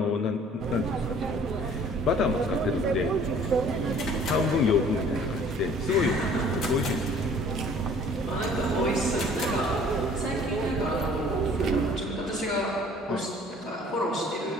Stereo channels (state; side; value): normal; both; correlation 0.53